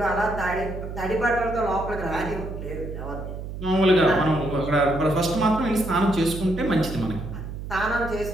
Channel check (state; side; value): noise; right; hum, 8 dB below the sound